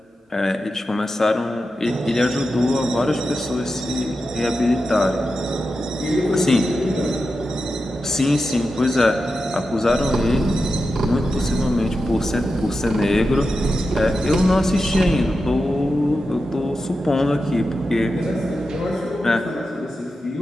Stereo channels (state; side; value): normal; both; correlation 0.90